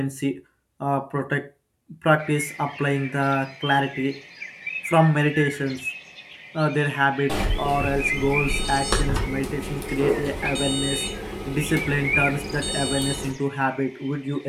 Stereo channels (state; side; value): identical; both; correlation 1.00